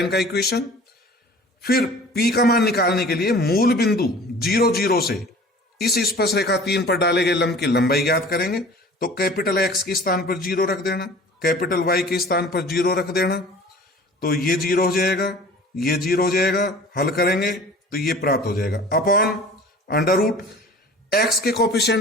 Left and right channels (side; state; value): both; normal; correlation 0.44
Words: का इक्वेशन। फिर p का मान निकालने के लिए मूल बिंदु 0, 0 से इस स्पर्श रेखा 3 पर डाले गए लंब की लंबाई ज्ञात करेंगे। तो कैपिटल x के स्थान पर 0 रख देना, कैपिटल Y के स्थान पर 0 रख देना, तो ये 0 हो जाएगा, ये 0 हो जाएगा। हल करेंगे तो ये प्राप्त हो जाएगा अपॉन अंडर रूट x के